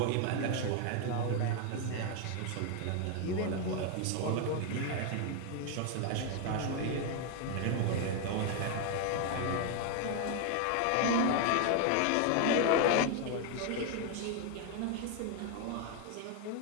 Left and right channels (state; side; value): different; both; correlation 0.01